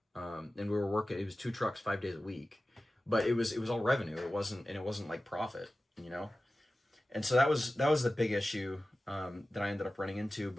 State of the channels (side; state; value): both; normal; correlation 0.95